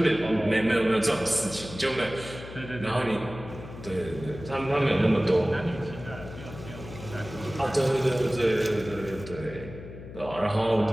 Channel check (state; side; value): noise; left; hum, 13 dB below the sound